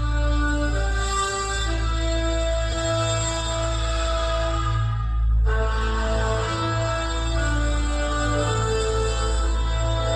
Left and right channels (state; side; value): identical; both; correlation 1.00